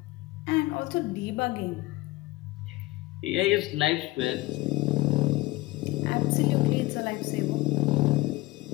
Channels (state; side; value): quieter; right; 19.8 dB